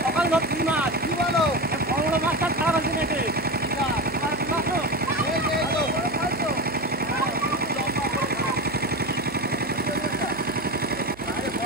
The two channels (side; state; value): right; noise; hum, 22 dB below the sound